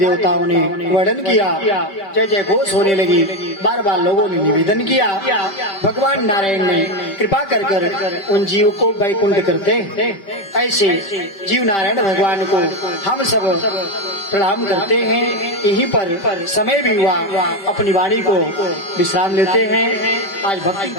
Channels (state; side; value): late; right; 5.1 ms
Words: ने वर्णन किया, जय जय घोष होने लगी। बार बार लोगों ने निवेदन किया, भगवान नारायण ने कृपा कर कर उन जीव को वैकुंठ करते। ऐसे जीव नारायण भगवान को हम सब प्रणाम करते हैं। यहीं पर समय भी हुआ, अपनी वाणी को विश्राम लेते हैं। आज भक्ति